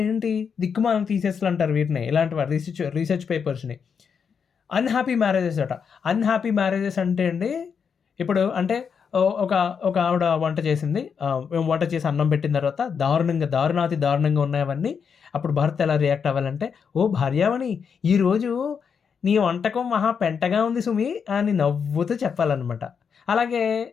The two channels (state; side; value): quieter; right; 6.6 dB